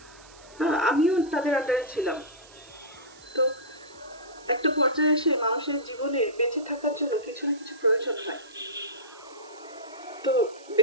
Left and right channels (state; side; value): noise; right; hiss, 23 dB below the sound